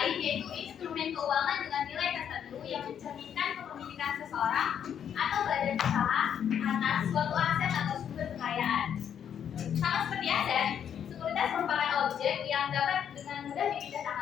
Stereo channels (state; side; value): quieter; right; 8.7 dB